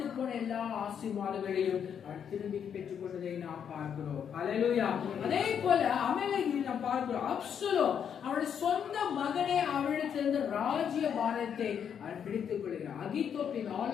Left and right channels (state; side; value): quieter; right; 8.0 dB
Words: போன எல்லா ஆசீர்வாதங்களையும் அவன் திரும்பி பெற்றுக் கொண்டதை நாம் பார்க்கிறோம். ஹல்லேலூயா. அதே போல அமலேக்கில் நாம் பார்க்கிறோம், அப்சலோம் அவனுடைய சொந்த மகனே அவனிடத்திலிருந்து ராஜ்ய பாரத்தை அவன் பிடித்துக் கொள்கிறான். அகித்தோப்பின்